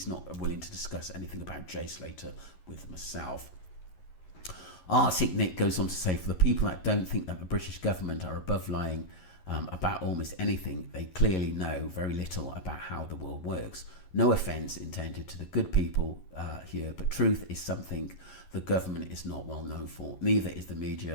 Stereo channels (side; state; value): right; late; 11 ms